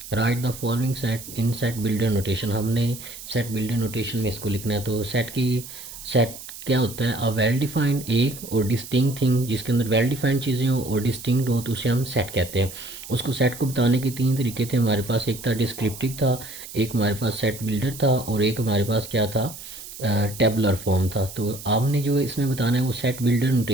right the following set in set builder notation. हमने सेट बिल्डर नोटेशन में इसको लिखना है। तो सेट क्या होता है? अ वेल डिफाइंड एक और डिस्टिंक्ट थिंग, जिसके अंदर वेल डिफाइंड चीज़ें हों और डिस्टिंक्ट हो तो उसे हम सेट कहते हैं। उसको सेट को बताने के तीन तरीके थे हमारे पास। एक था डिस्क्रिप्टिव था, एक हमारे पास सेट बिल्डर था और एक हमारे पास क्या था, टेबुलर फॉर्म था। तो आपने जो इसमें बताना है वो सेट बिल्डर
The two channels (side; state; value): right; noise; hiss, 13 dB below the sound